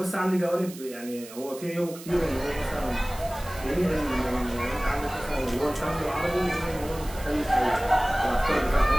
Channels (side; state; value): right; noise; hiss, 16 dB below the sound